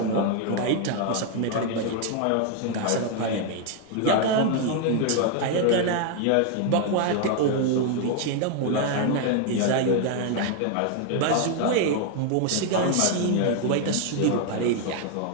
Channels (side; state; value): both; different; correlation 0.00